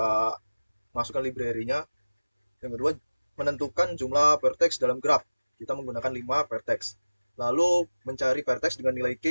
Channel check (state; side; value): inverted; both; correlation -1.00